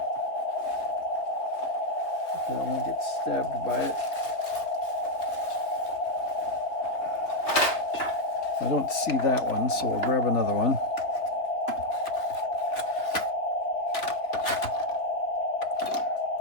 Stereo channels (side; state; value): right; late; 3.2 ms